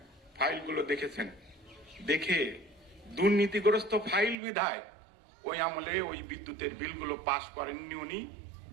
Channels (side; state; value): left; drops out; at 4.4 s